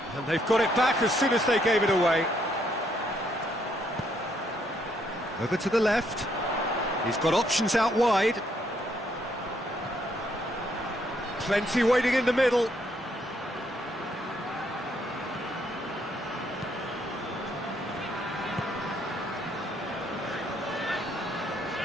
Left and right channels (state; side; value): normal; both; correlation 0.72